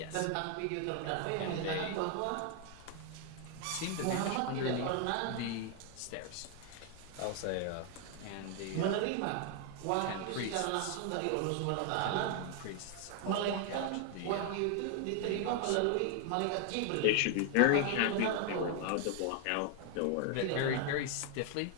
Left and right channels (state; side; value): different; both; correlation 0.00